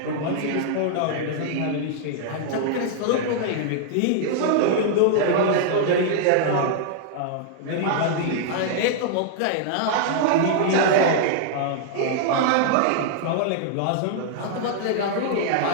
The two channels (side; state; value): both; different; correlation -0.01